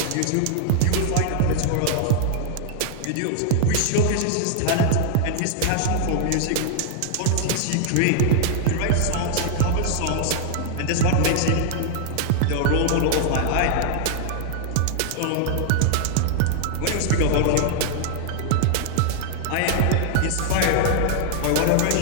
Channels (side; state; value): both; different; correlation 0.00